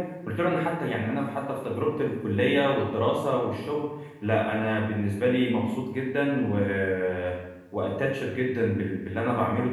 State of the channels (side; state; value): both; identical; correlation 1.00